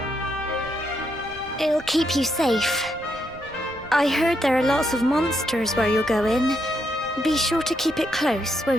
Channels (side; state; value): right; noise; rumble, 20 dB below the sound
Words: It'll keep you safe. I heard there are lots of monsters where you're going. Be sure to keep it close,